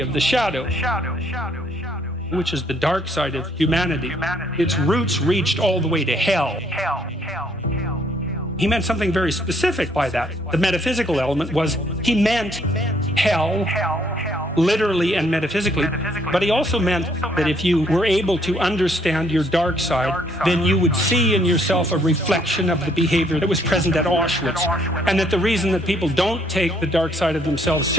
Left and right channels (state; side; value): normal; both; correlation 0.66